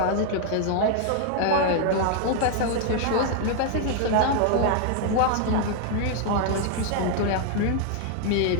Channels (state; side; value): different; both; correlation 0.00